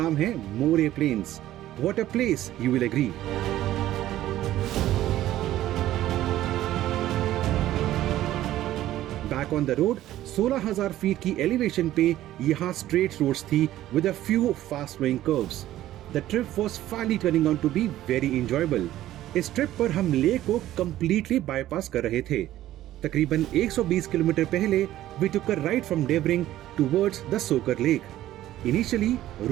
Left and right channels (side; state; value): left; quieter; 13.9 dB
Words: नाम है मोरे Plains. What a place, you will agree. Back on the road, 16,000 feet की elevation पे यहाँ straight roads थी with a few fast flowing curves. The trip was finally turning out to be very enjoyable. इस trip पर हम lake को completely bypass कर रहे थे। तकरीबन 120 किलोमीटर पहले we took a right from Devering towards the Tso Kar Lake. Initially,